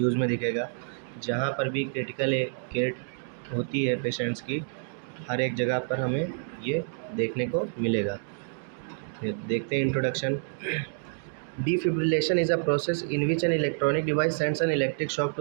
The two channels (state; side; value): silent; left; digital silence